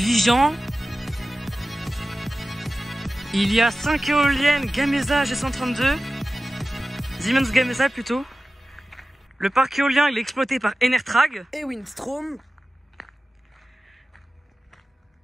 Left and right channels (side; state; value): both; normal; correlation 0.95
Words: Il y a 5 éoliennes Gamesa G132. Siemens Gamesa plutôt. Le parc éolien il est exploité par Enertrag Et Windstrom.